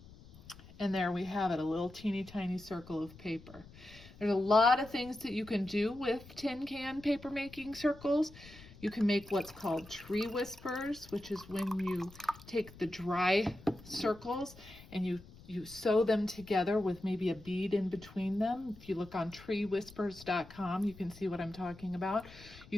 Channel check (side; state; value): left; noise; rumble, 20 dB below the sound